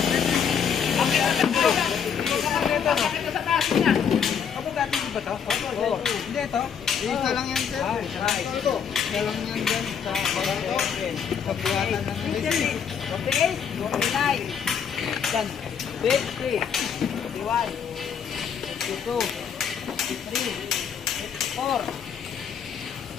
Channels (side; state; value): right; quieter; 7.4 dB